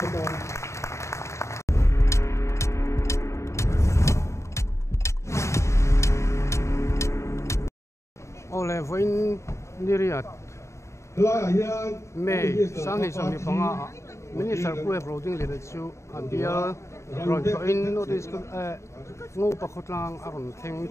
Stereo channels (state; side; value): late; right; 0.14 ms